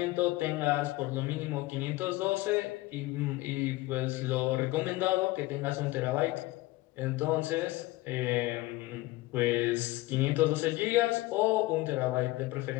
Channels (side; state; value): right; quieter; 19.3 dB